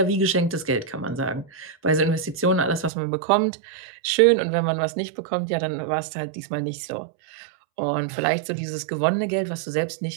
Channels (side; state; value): left; drops out; at 2.9 s